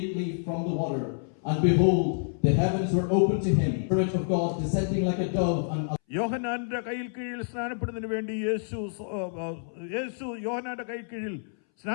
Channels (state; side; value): silent; right; 59 dB below the other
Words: from the water, and behold, the heavens were opened to him, the Spirit of God descending like a dove. And യോഹന്നാന്റെ കയ്യിൽ കീഴിൽ സ്നാനപ്പെടുന്നതിന് വേണ്ടി യേശു യോഹന്നാന്റെ കയ്യിൽ കീഴിൽ